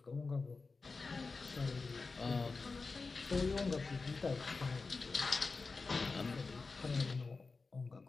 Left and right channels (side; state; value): right; quieter; 4.1 dB